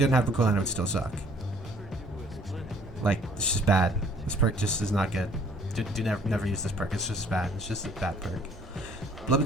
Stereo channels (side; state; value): both; normal; correlation 0.59